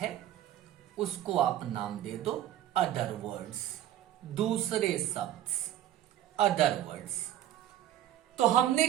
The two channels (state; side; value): quieter; left; 12.2 dB